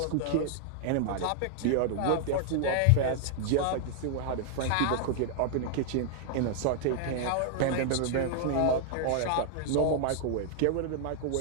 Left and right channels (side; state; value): both; different; correlation 0.00